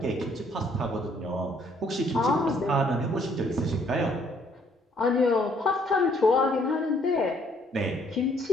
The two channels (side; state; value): both; normal; correlation 0.65